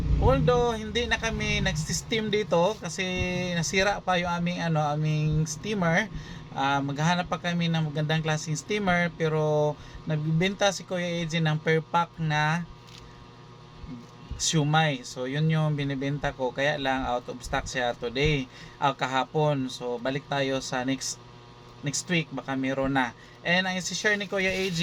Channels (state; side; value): identical; both; correlation 1.00